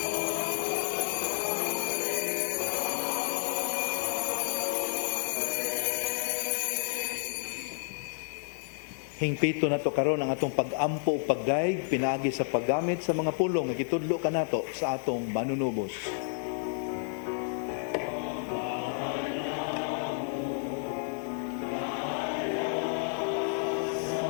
Hingpito na to karon ang atong pag-ampo ug pagdaig pinaagi sa paggamit sa mga pulong nga gitudlo kanato sa atong manunubos.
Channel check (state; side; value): silent; right; 57 dB below the other